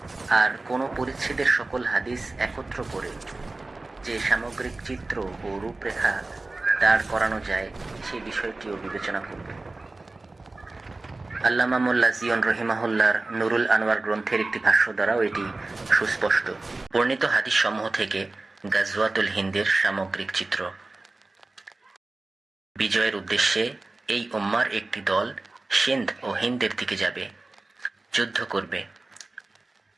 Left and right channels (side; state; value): left; quieter; 3.2 dB